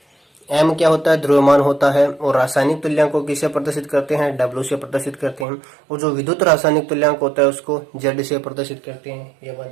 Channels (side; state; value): left; drops out; at 5.5 s